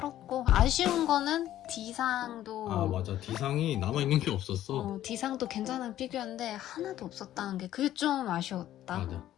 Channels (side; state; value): right; quieter; 12.7 dB